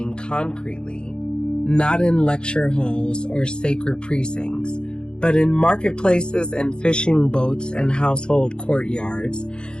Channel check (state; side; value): late; right; 0.050 ms